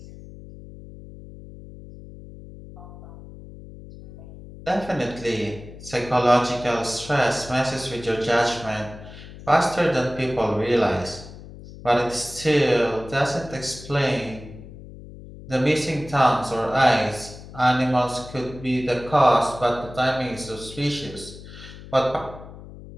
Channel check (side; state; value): left; noise; hum, 16 dB below the sound